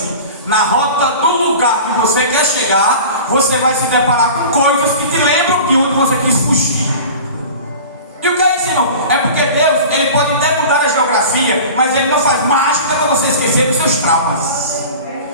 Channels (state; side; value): inverted; both; correlation -0.37